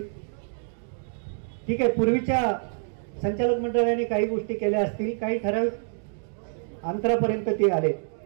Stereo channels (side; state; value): left; silent; 60 dB below the other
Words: ठीक आहे, पूर्वीच्या संचालक मंडळाने काही गोष्टी केल्या असतील, काही ठराविक अंतरापर्यंत ते आले.